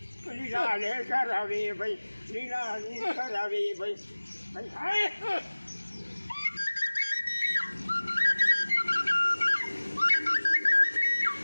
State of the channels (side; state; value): both; inverted; correlation -1.00